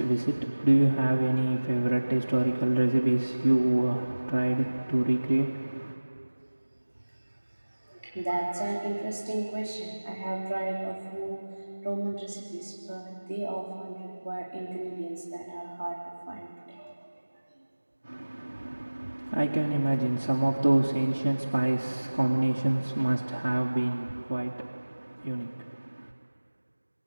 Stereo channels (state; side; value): inverted; both; correlation -1.00